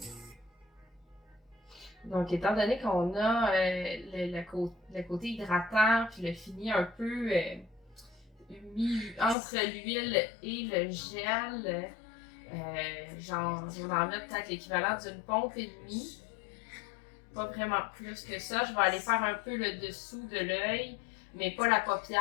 Donc, étant donné qu'on a le côté hydratant, puis le fini un peu mis entre l'huile et le gel, genre, je vais en mettre peut-être l'équivalent d'une pompe et demie. Pas vraiment plus que ça. Je vais aller faire un peu le dessous de l'œil, mais pas la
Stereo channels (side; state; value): right; drops out; at 9.3 s